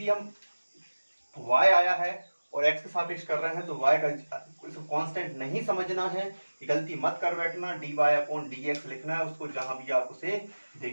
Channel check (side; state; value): both; inverted; correlation -1.00